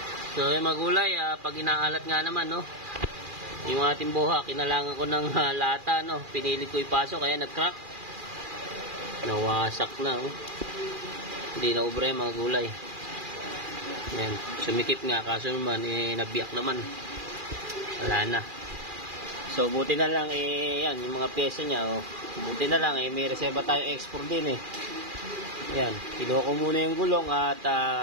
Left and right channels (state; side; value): late; left; 2.4 ms